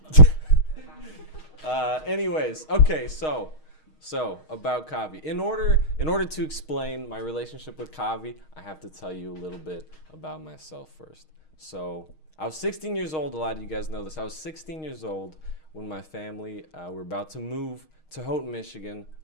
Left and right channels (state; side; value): late; right; 6.4 ms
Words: Anyways, okay, so about Kavi. In order to explain my relationship with Kavi, I have to tell you a little bit about myself first. So I was 16 years old. A lot of you guys know this. I was 16 years old when my family were about to move to Houghton, Michigan,